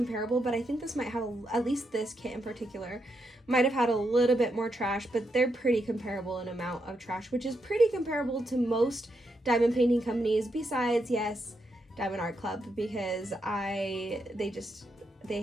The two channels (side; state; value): both; normal; correlation 0.82